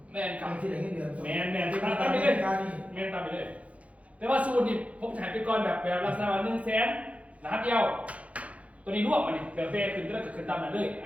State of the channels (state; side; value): late; left; 0.065 ms